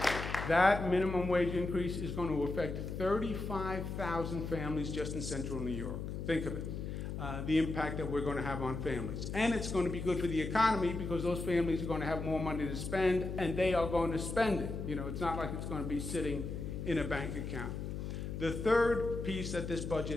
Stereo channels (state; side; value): noise; left; hum, 5 dB below the sound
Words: That minimum wage increase is going to affect 35,000 families just in central New York. Think of it, the impact that we're going to have on families. And it's going to be good for the economy because those families are going to have more money to spend, and they are going to spend it. You know, it's not like it's going to be sitting in a bank account. The third piece that this